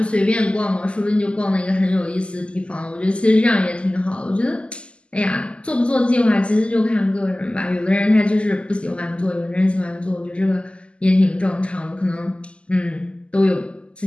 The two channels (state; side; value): late; right; 0.054 ms